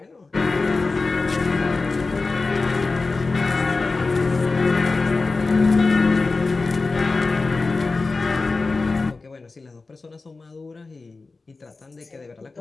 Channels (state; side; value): quieter; right; 3.8 dB